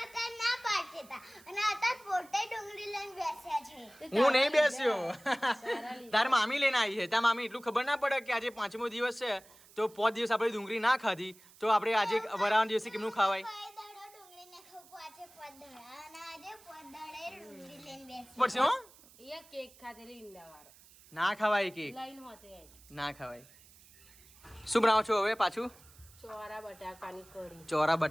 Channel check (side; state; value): right; noise; hiss, 24 dB below the sound